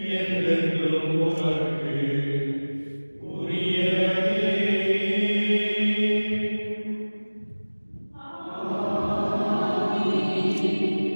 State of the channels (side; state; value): both; inverted; correlation -1.00